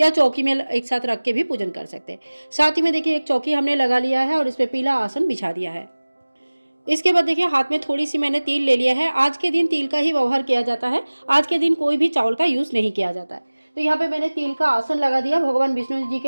चौकी में एक साथ रख के भी पूजन कर सकते हैं। साथ ही में देखिए, एक चौकी हमने लगा लिया है और इस पर पीला आसन बिछा दिया है। इसके बाद देखिए, हाथ में थोड़ी सी मैंने तिल ले लिया है। आज के दिन तिल का ही व्यवहार किया जाता है। आज के दिन कोई भी चावल का यूज़ नहीं किया जाता है। तो यहाँ पे मैंने तिल का आसन लगा दिया भगवान विष्णु जी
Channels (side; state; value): both; inverted; correlation -1.00